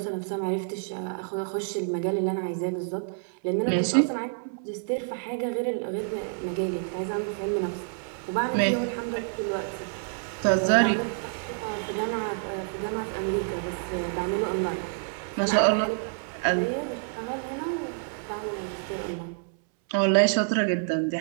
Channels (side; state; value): left; silent; 59 dB below the other